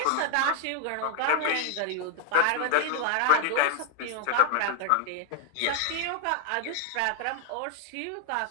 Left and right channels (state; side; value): different; both; correlation 0.01